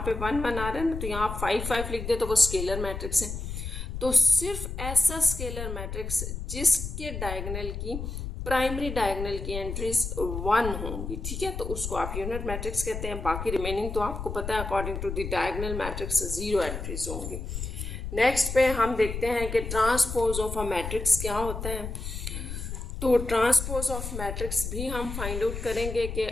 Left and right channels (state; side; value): noise; left; rumble, 6 dB below the sound